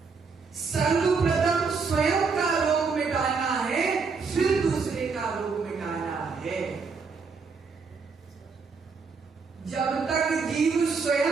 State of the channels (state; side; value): quieter; left; 5.0 dB